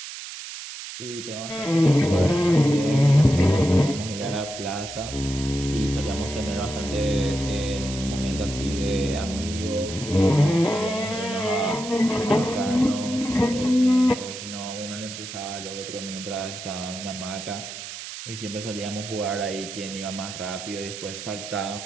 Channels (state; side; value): noise; right; hiss, 10 dB below the sound